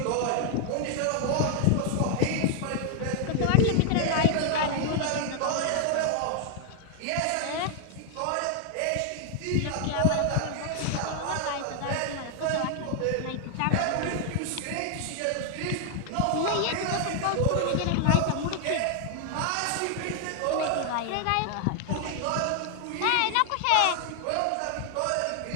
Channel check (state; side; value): different; both; correlation 0.00